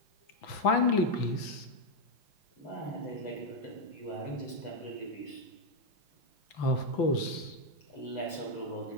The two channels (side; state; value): right; late; 6.0 ms